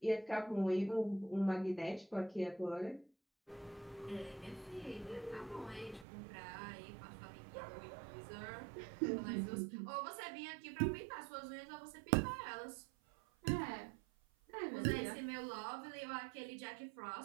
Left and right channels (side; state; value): left; drops out; at 6.1 s